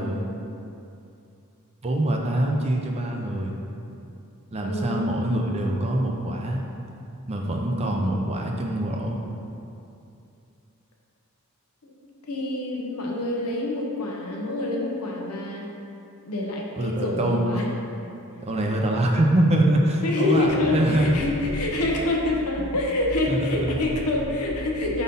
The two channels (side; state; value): both; normal; correlation 0.56